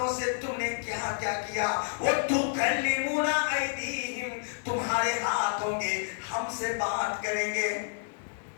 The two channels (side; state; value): right; silent; 56 dB below the other